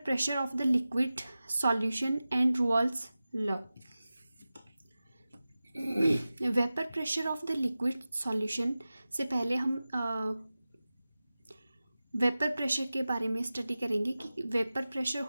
pressure of the liquid solution and Raoult's law. Vapour pressure of the liquid solution से पहले हम वेपर प्रेशर के बारे में स्टडी करेंगे कि वेपर प्रेशर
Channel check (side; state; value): both; inverted; correlation -0.95